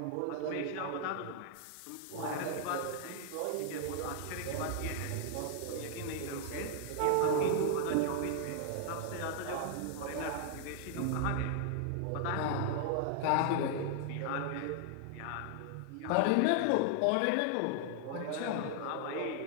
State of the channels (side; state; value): both; different; correlation -0.01